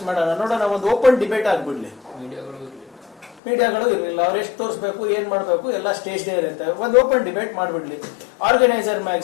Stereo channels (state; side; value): drops out; right; at 3.4 s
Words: ಮಾಡೋಣ, ನೋಡೋಣ, ಒಂದು ಓಪನ್ ಡಿಬೇಟ್ ಆಗ್ಬಿಡ್ಲಿ. ಮೀಡಿಯಾಗಳು ಇರಲಿಲ್ಲ, ಅವ್ರು ಎಷ್ಟು ತೋರಿಸ್ಬೇಕು, ಏನ್ ಮಾಡಬೇಕು ಎಲ್ಲ ಸ್ಟೇಜ್ ಡೇ ಇರುತ್ತೆ. ಒಂದು ಓಪನ್ ಡಿಬೇಟ್ ಮಾಡ್ಬಿಡ್ಲಿ. ಆರ್ಗನೈಸರ್